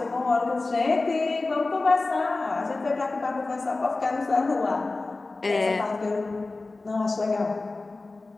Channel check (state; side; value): quieter; right; 3.4 dB